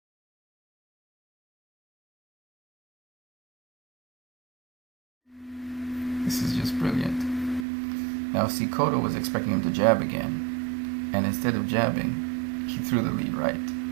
This is just brilliant. Now see, Cotto was expecting him to jab again, and instead of jabbing, he threw the lead right.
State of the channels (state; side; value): drops out; left; at 7.7 s